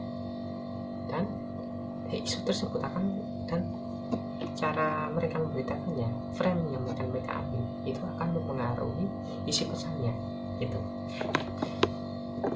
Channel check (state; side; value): identical; both; correlation 1.00